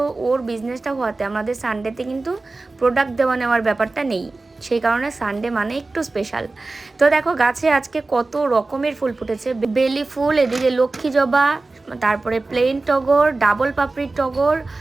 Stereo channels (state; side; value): quieter; left; 3.4 dB